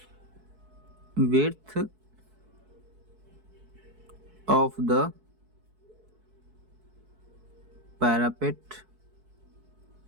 विड्थ ऑफ द पैरापेट,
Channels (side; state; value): left; late; 4.6 ms